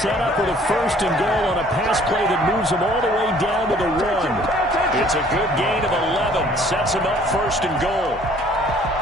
up with a first and goal on a pass play that moves them all the way down to the 1. It's a good gain of 11. Sets them up first and goal.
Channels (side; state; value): both; normal; correlation 0.57